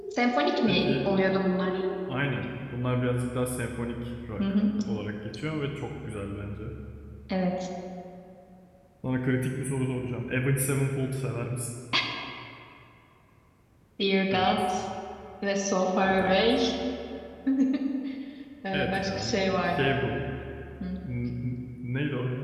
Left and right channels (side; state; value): both; identical; correlation 1.00